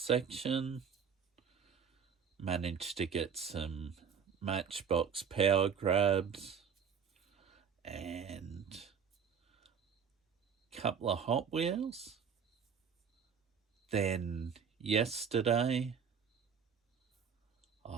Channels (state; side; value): quieter; left; 7.0 dB